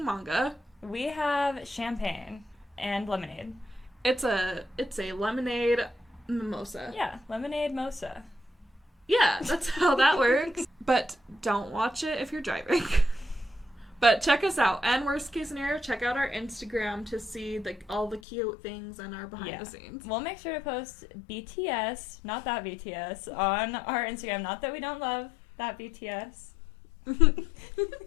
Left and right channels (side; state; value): right; drops out; at 18.2 s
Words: manga. We have champagne and lemonade. It's a lemonade mimosa. Yeah, lemonade mosa. Yeah, that's how that works. But don't watch it if you're driving. But check us out. And worst case scenario, check out our Instagram to see all the cute things and our behind the scenes. We'll make sure to post BTS, not that BTS, on our Instagram. Not that we don't love that BTS.